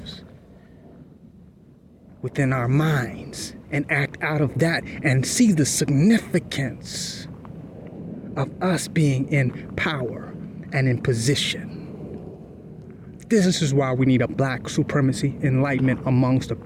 within our minds and act out of that and see the significance of us being in power and in position. This is why we need a black supremacy enlightenment amongst the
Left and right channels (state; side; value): identical; both; correlation 1.00